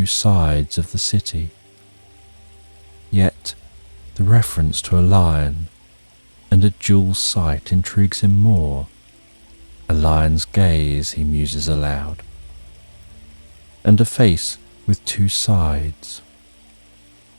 sides of the city. Yet the reference to a lion and a dual sight intrigues him more. A lion's gaze, he muses aloud, and a face with two sides.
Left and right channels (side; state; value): both; inverted; correlation -1.00